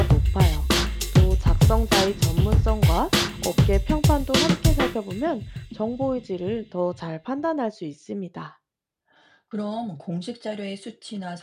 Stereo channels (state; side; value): identical; both; correlation 1.00